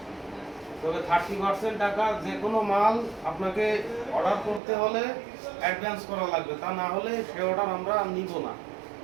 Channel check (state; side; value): drops out; left; at 4.6 s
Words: তবে 30% টাকা যে কোনো মাল আপনাকে অর্ডার করতে হলে অ্যাডভান্স করা লাগবে, তা না হলে সে অর্ডার আমরা নিব না।